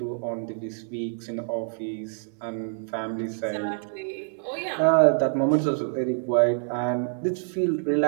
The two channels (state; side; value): silent; left; digital silence